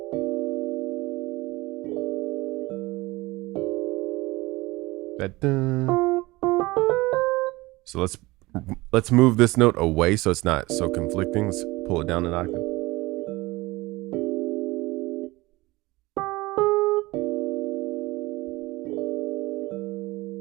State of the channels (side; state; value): left; quieter; 21.1 dB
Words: So let's move this note away so it's not so conflicting. Let's pull it down an octave.